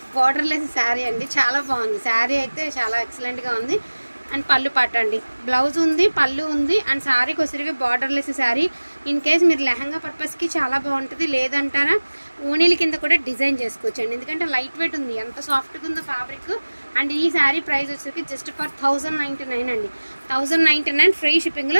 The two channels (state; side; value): inverted; both; correlation -1.00